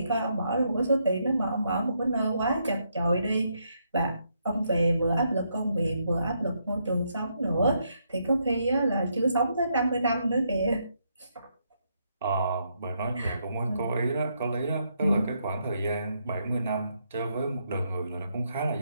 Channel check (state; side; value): inverted; both; correlation -0.77